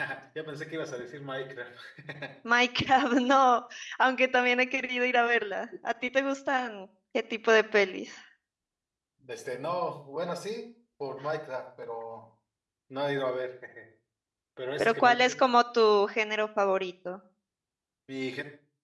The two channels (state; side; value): identical; both; correlation 1.00